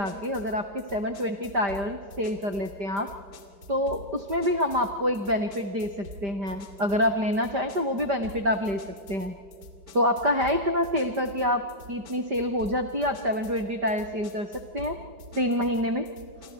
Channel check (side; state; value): left; late; 5.1 ms